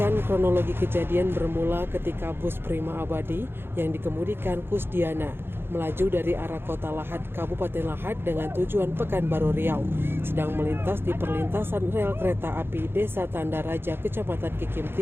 kronologi kejadian bermula ketika bus Prima Abadi yang dikemudikan Kusdiana melaju dari arah kota Lahat, Kabupaten Lahat dengan tujuan Pekanbaru Riau, sedang melintas di perlintasan rel kereta api Desa Tanda Raja, Kecamatan Kikim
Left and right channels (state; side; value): late; left; 0.11 ms